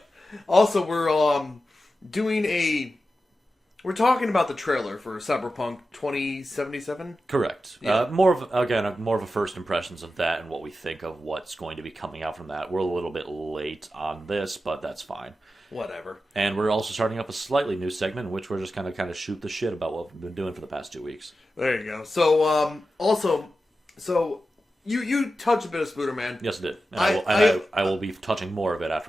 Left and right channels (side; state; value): both; normal; correlation 0.92